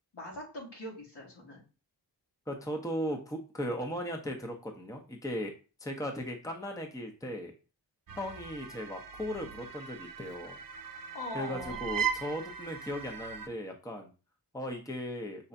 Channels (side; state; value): both; normal; correlation 0.45